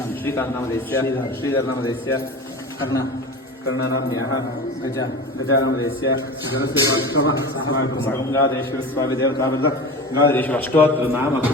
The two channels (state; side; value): normal; both; correlation 0.32